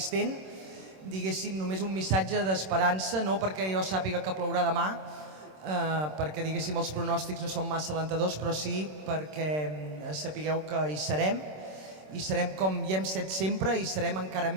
diguéssim, només un missatge d'esperança, no perquè jo sàpiga que plourà demà, perquè diguéssim els pronòstics no són massa alentadors, però sí perquè sapigueu que hi serem com hi hem set sempre, i serem encara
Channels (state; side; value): late; left; 26 ms